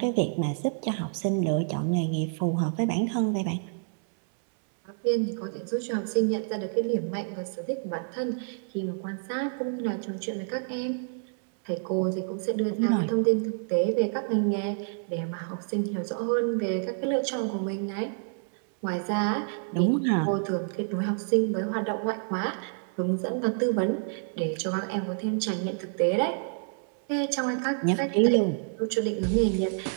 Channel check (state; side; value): silent; left; 59 dB below the other